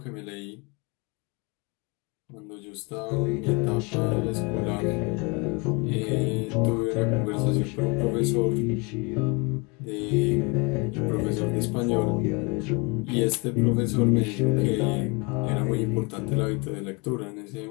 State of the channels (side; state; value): right; quieter; 29.4 dB